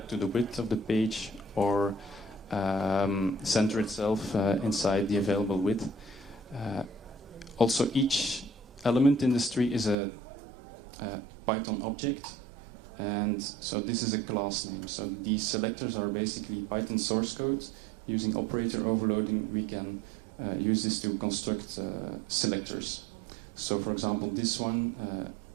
to the width of the page or center itself inside the available width. Also, each element in this tree is a Python object, and so this is a class name. So these selectors are basically Python source code. Using operator overloading, we can use this to construct selectors. So for example, this one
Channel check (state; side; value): drops out; left; at 10.0 s